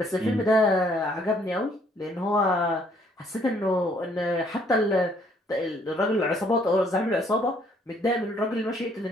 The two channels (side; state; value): both; normal; correlation 0.64